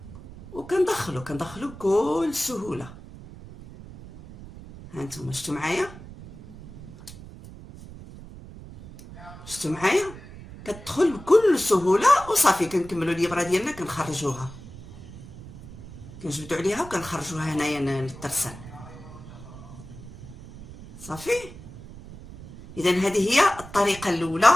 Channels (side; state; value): right; noise; rumble, 16 dB below the sound